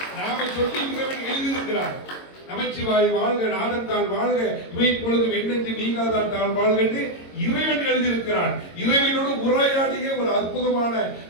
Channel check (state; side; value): late; right; 22 ms